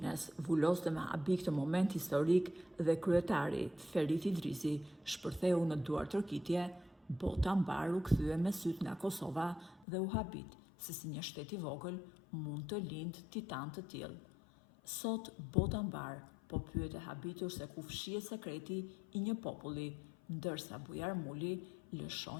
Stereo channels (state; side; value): drops out; right; at 9.9 s